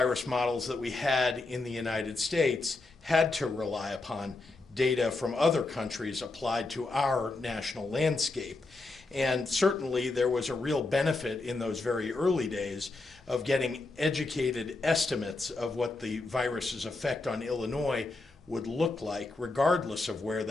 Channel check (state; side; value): quieter; right; 3.3 dB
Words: models that we had in the United States had to rely upon data from other countries applied to our national landscape. And certainly there was a real benefit in those very early days of getting educated estimates of what the virus's effect on Illinois would look like, regardless of where